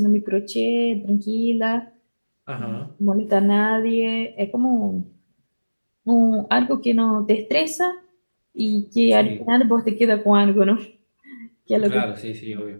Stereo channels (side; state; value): both; inverted; correlation -1.00